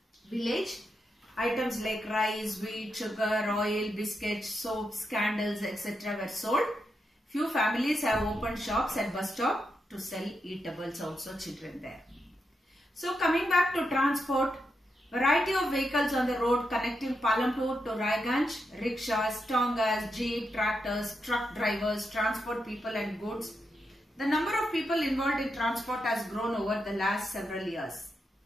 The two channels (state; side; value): normal; both; correlation 0.85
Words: village. Items like rice, wheat, sugar, oil, biscuits, soaps, candles, etc. were sold. Few families have opened shops at bus stop to sell eatables also, children there. So coming back to transport, variety of vehicles on the road connecting Palampur to Raiganj, rickshaws, tongas, jeep, tractors, truck drivers, transport people and goods. The number of people involved in transport has grown over the last several years.